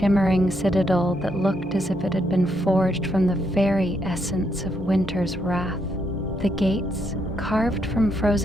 citadel that looked as if it had been forged from the very essence of winter's wrath. The gates, carved from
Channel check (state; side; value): normal; both; correlation 0.77